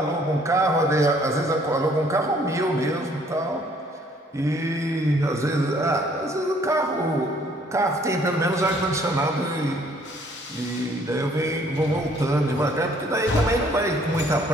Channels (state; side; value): normal; both; correlation 0.61